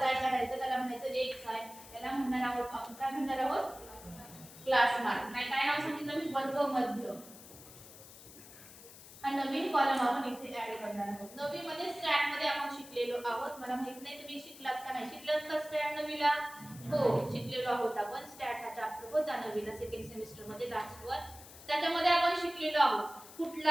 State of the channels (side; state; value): left; noise; hiss, 17 dB below the sound